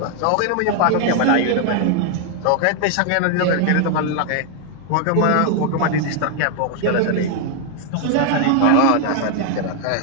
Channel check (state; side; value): different; both; correlation 0.00